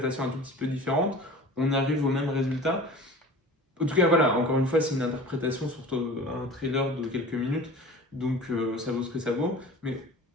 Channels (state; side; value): normal; both; correlation 0.39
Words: un tout petit peu différente, on arrive au même résultat. En tout cas, voilà, encore une fois, c'est une interprétation sur un trailer de quelques minutes, donc ça vaut ce que ça vaut. Mais